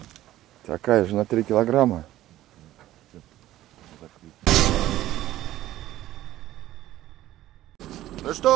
Такая же на 3 килограмма. Ну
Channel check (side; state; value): left; quieter; 14.5 dB